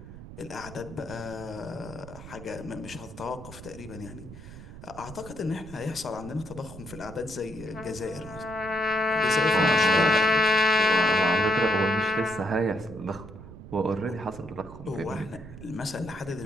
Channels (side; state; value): right; noise; rumble, 14 dB below the sound